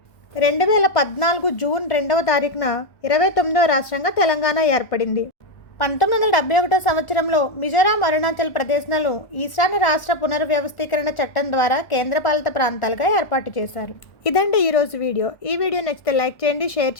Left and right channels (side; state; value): right; late; 1.4 ms